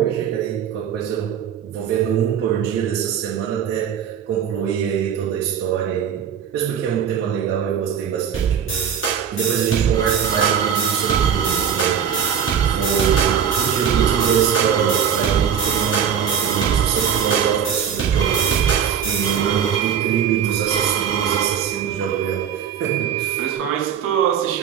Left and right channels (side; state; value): left; quieter; 8.2 dB